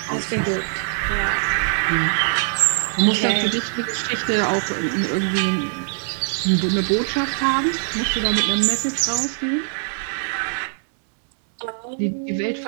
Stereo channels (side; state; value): left; silent; 64 dB below the other